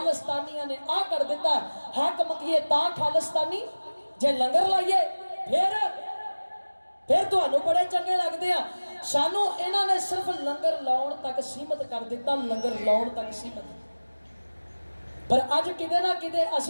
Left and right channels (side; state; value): both; inverted; correlation -1.00